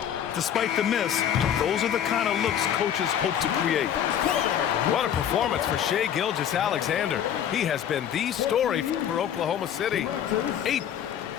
Despite the miss, those are the kind of looks coaches hope to create. What a performance for Shai Gilgeous-Alexander. He has been the story for Oklahoma City. 8.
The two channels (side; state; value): right; quieter; 9.5 dB